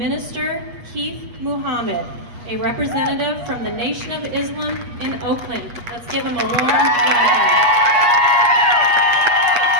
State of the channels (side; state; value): left; late; 8.3 ms